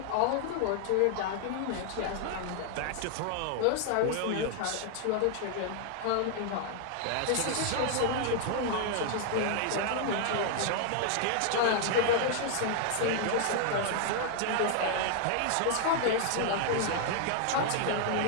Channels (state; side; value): different; both; correlation 0.00